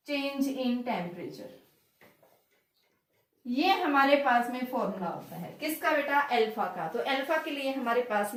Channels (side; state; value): both; identical; correlation 1.00